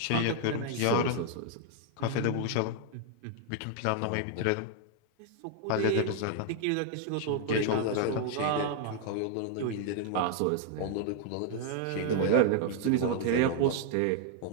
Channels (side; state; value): both; different; correlation 0.00